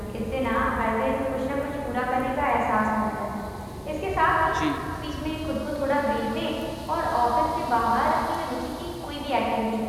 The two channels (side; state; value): both; identical; correlation 1.00